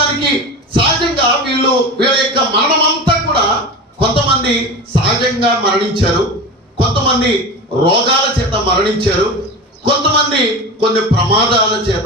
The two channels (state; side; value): normal; both; correlation 0.28